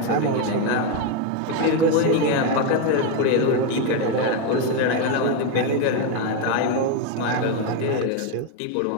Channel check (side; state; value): both; different; correlation 0.02